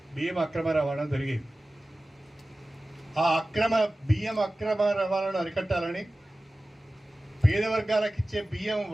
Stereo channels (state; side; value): normal; both; correlation 0.96